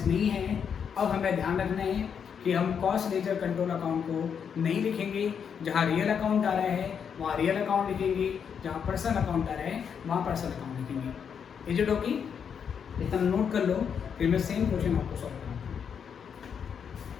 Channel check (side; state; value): right; quieter; 7.3 dB